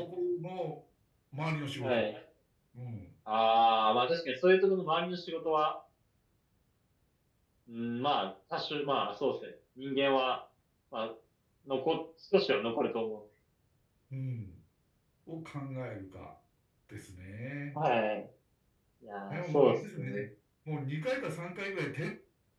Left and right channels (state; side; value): identical; both; correlation 1.00